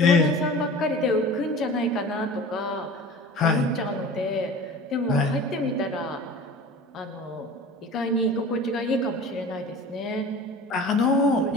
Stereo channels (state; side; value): normal; both; correlation 0.39